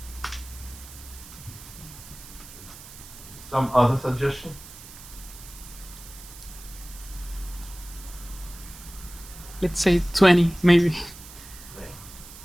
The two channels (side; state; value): right; noise; hiss, 16 dB below the sound